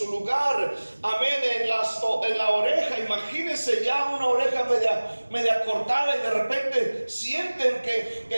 lugar, amén, en la oreja. Imagínense ya una oreja media cortada, y de repente sienten que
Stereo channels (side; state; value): both; inverted; correlation -1.00